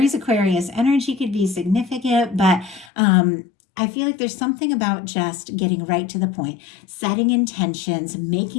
Aquarius energy could be significant, but I feel like there's something about just getting right to the point, setting intentions,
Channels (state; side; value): drops out; right; at 2.9 s